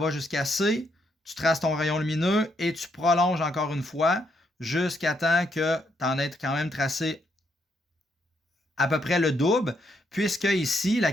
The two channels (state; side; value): normal; both; correlation 0.76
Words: jusqu'à C, tu traces ton rayon lumineux et tu prolonges encore une fois jusqu'à temps que tu en aies quand même tracé à peu près le double, puisque ici, la